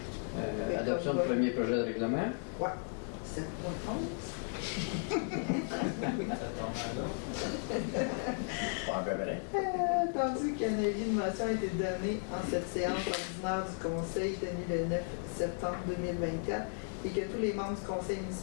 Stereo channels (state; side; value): silent; right; 54 dB below the other